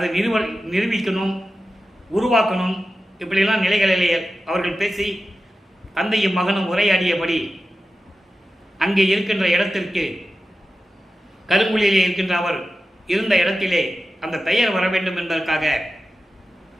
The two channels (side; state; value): both; normal; correlation 0.93